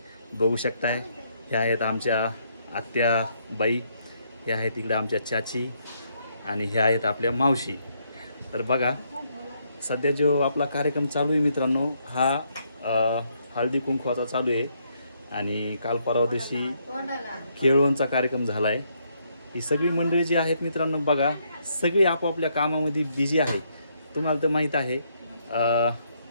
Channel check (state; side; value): inverted; both; correlation -0.74